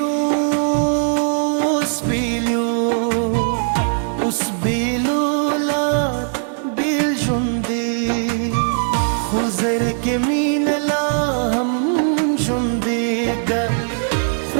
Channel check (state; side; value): silent; left; 66 dB below the other